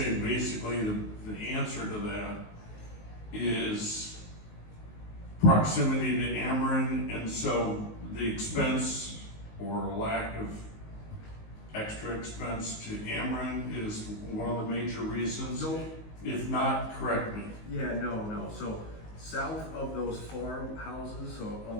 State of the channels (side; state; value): right; late; 19 ms